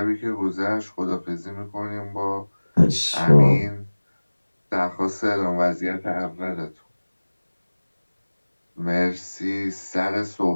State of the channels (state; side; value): inverted; both; correlation -1.00